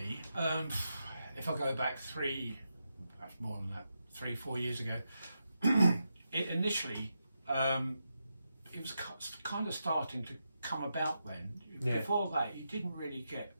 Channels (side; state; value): both; inverted; correlation -0.86